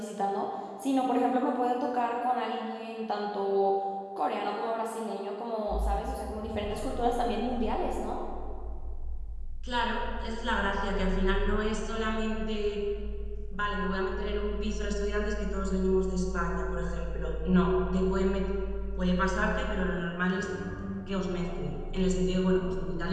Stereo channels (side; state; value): both; identical; correlation 1.00